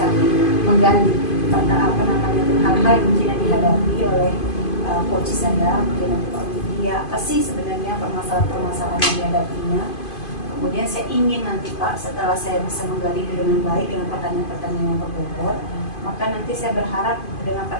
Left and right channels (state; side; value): late; right; 2.5 ms